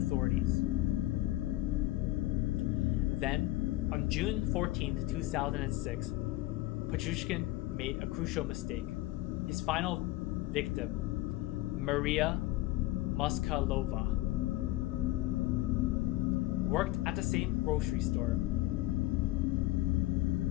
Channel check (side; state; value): right; quieter; 17.5 dB